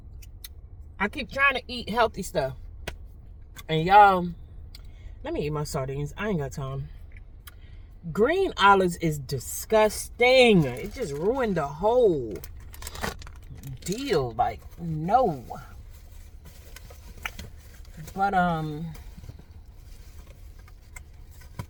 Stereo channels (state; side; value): identical; both; correlation 1.00